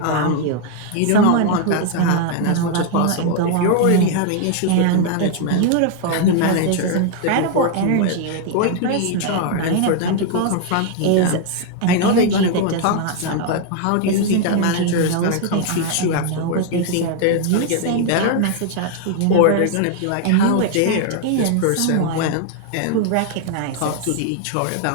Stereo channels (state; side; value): different; both; correlation 0.00